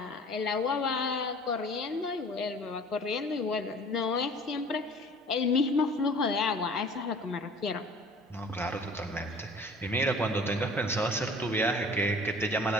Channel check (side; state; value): both; normal; correlation 0.47